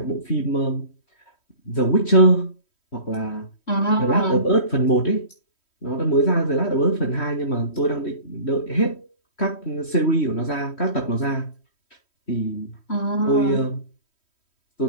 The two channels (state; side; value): late; right; 3.1 ms